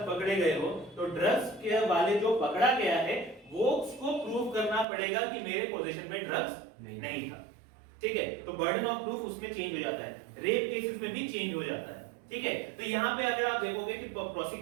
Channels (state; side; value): drops out; left; at 4.9 s